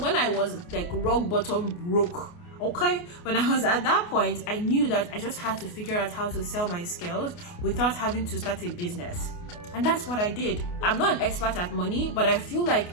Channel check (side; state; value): right; late; 28 ms